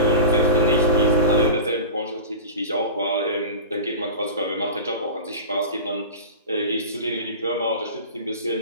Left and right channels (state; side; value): inverted; both; correlation -0.31